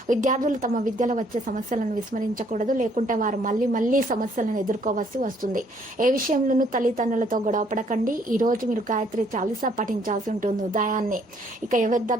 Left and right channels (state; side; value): normal; both; correlation 0.65